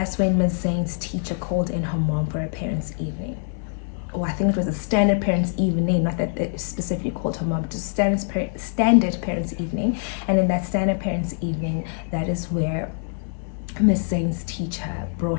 when Ms. Zane's teacher called in her mom for a parents' evening. I think it was a standard parents' evening, not that they specifically called her mom, just standard parents' evening. And in that standard parents' evening, that is where Ms. Zane's teacher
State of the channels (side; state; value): right; silent; 63 dB below the other